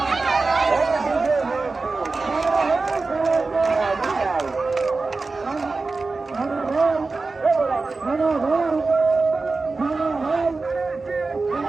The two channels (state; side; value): quieter; left; 3.8 dB